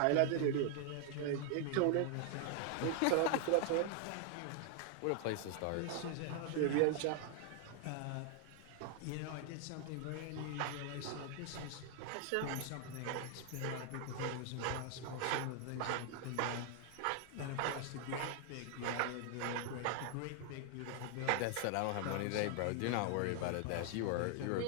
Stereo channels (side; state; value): both; different; correlation 0.00